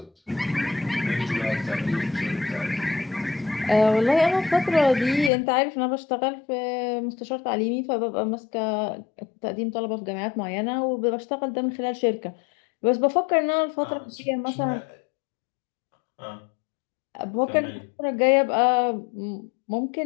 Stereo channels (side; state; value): right; drops out; at 5.3 s